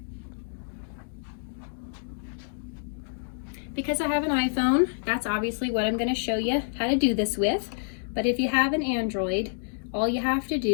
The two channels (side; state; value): right; silent; digital silence